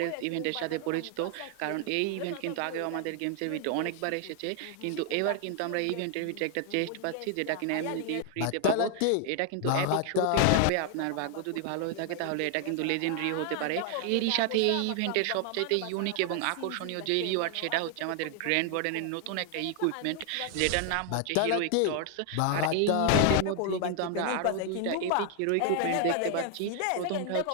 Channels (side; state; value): both; different; correlation 0.00